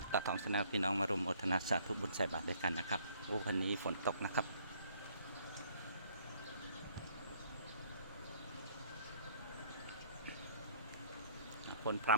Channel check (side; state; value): both; inverted; correlation -0.60